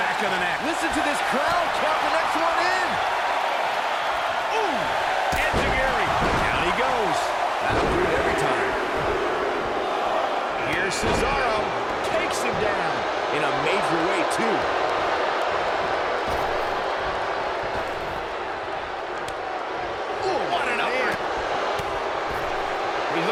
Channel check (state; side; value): identical; both; correlation 1.00